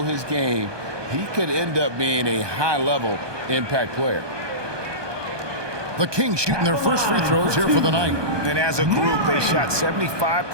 his game, he could end up being a high-level impact player. The Kings shooting their first free throws here for the night. And as a group, they shot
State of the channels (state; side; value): late; left; 1.2 ms